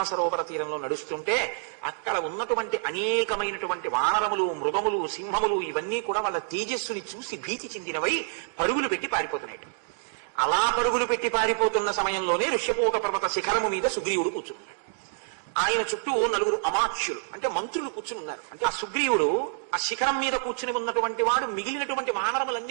సరోవర తీరంలో నడుస్తుంటే అక్కడ ఉన్నటువంటి అనేకమైనటువంటి వానరములు, మృగములు, సింహములు ఇవన్నీ కూడా వాళ్ళ తేజస్సుని చూసి భీతి చెందినవై పరుగులు పెట్టి పారిపోతున్నాయి. అలా పరుగులు పెట్టి పారిపోతున్న సమయంలోనే ఋష్యపూక పర్వత శిఖరము మీద సుగ్రీవుడు కూర్చున్నాడు. ఆయన చుట్టూ నలుగురు అమాత్యులు అంటే మంత్రులు కూర్చుని ఉన్నారు. అంటే ఆ సుగ్రీవుడు ఆ శిఖరం మీద కూర్చుని ఉన్నటువంటి వాడు మిగిలినటువంటి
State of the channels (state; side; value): silent; left; digital silence